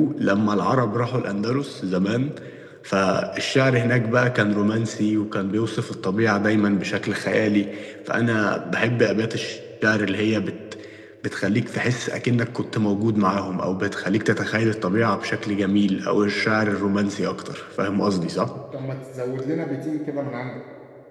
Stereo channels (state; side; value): identical; both; correlation 1.00